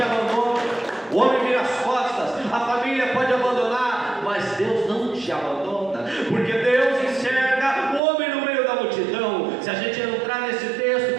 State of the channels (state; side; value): drops out; left; at 8.0 s